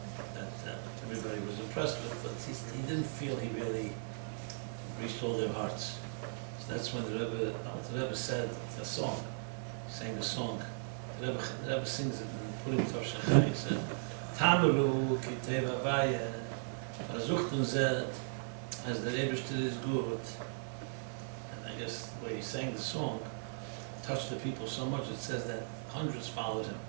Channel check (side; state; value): left; silent; digital silence